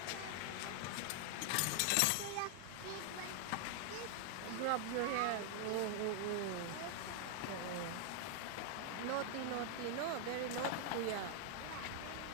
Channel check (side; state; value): both; different; correlation 0.00